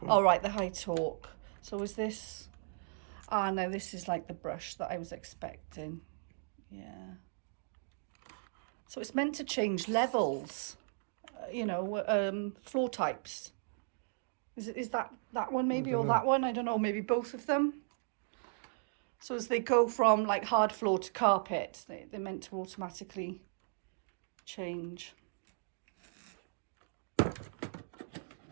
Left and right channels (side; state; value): left; silent; digital silence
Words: one. Oh, right, the high torque. So is this... Ah, no, this is like the brush that I was expecting. Yeah. So it's meant to change levels, you know, floor types. Is that one maybe, or that one? I don't know, maybe both of them. So as they go from like hard floor to carpet, they're meant to automatically change.